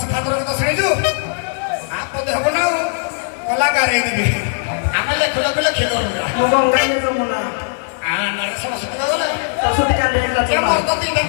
ଠାକୁର ଗୀତ ଶୁଣିଛୁ ଆପଦ ହବ ନା କଳାକାର ହେଇଯିବେ ଆମେ ଲେଖିଲ ଲେଖିଲ ମୁଁ ଗଙ୍ଗାଇଲେ ଯମୁନା ସରସ୍ୱତୀ ଗଲେ ସରସ୍ୱତୀ କାଲି ହେଲା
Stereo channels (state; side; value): silent; right; digital silence